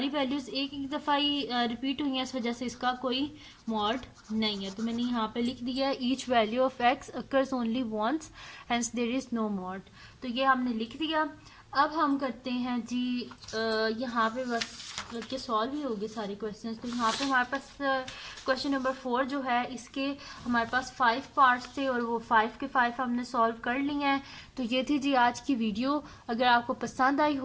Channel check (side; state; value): both; identical; correlation 1.00